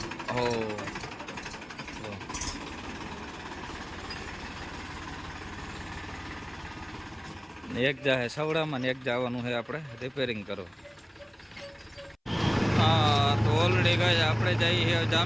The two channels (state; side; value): identical; both; correlation 1.00